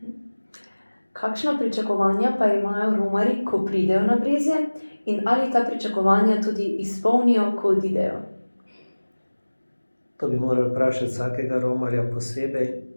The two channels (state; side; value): inverted; both; correlation -1.00